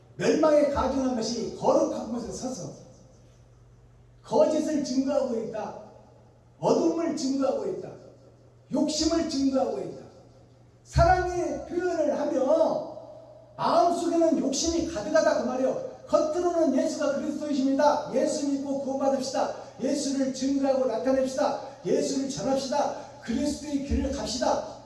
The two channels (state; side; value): identical; both; correlation 1.00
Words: 멸망에 가증한 것이 거룩한 곳에 서서 거짓을 증거하고 있다. 어둠을 증거하고 있다. 욕심을 증거하고 있다. 사랑의 표현을 하며 마음속에는 욕심이 가득하다 그 말이에요. 겉으로는 예수가 그리스도이십니다. 예수 믿고 구원받읍시다. 예수를 증거하고 나타냅시다. 예수를 전합시다. 그리스도의 길을 갑시다.